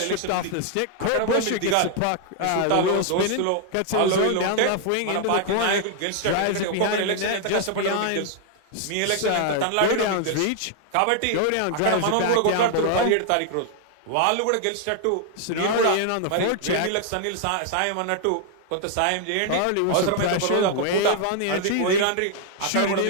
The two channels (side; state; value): both; different; correlation 0.00